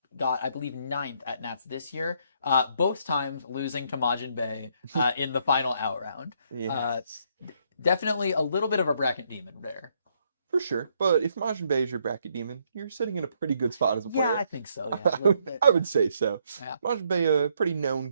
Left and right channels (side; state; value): both; inverted; correlation -0.72